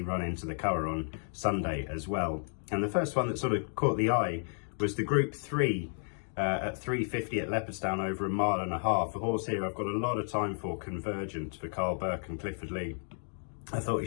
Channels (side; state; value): right; silent; 56 dB below the other